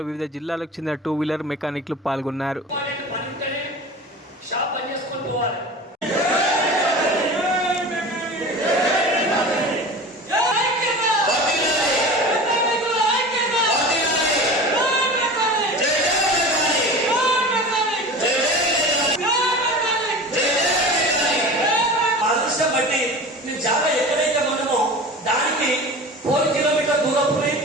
వివిధ జిల్లాలకు చెందిన టూ వీలర్ మెకానిక్లు పాల్గొన్నారు. జాగా ఎక్కడైతే మనమో దానికి 4 కిలోమీటర్ దూరంలోనే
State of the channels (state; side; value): normal; both; correlation 0.35